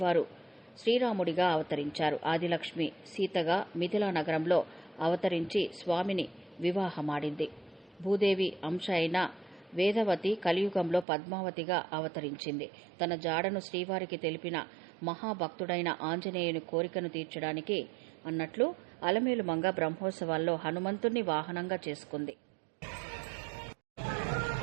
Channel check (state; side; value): drops out; left; at 11.1 s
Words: శ్రీరాముడిగా అవతరించారు. ఆదిలక్ష్మి సీతగా మిథిలా నగరంలో అవతరించి స్వామిని వివాహమాడింది. భూదేవి అంశ అయిన వేదవతి కలియుగంలో పద్మావతిగా అవతరించింది. తన జాడను శ్రీవారికి తెలిపిన మహాభక్తుడైన ఆంజనేయుని కోరికను తీర్చడానికి అన్నట్లు అలమేలుమంగ బ్రహ్మోత్సవాల్లో హనుమంతుణ్ణి వాహనంగా చేసుకుంది.